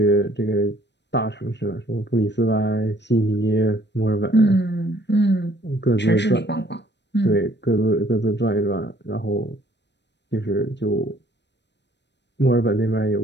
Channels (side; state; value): right; late; 0.51 ms